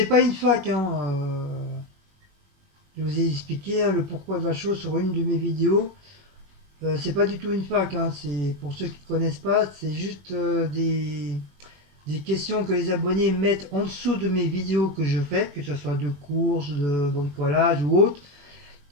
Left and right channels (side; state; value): left; late; 21 ms